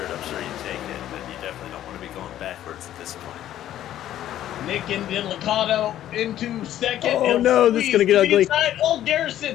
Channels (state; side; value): quieter; right; 12.3 dB